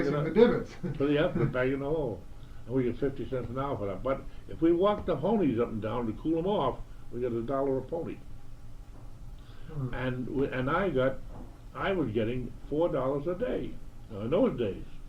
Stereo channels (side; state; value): both; identical; correlation 1.00